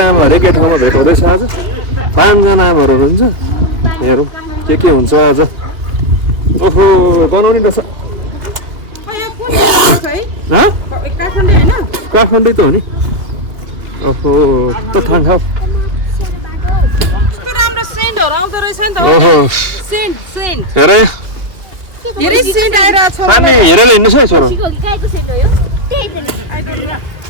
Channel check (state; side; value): late; left; 2.6 ms